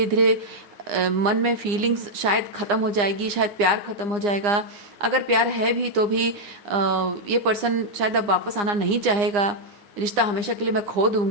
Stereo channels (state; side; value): late; left; 9.8 ms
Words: धीरे मन में फीलिंग्स शायद ख़त्म हो जाएगी, शायद प्यार ख़त्म हो जाएगा। अगर प्यार है भी तो भी ये पर्सन शायद अब वापस आना नहीं चाहेगा, रिश्ता हमेशा के लिए मैं खो